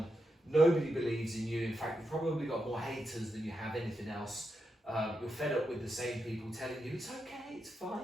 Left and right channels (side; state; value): both; normal; correlation 0.86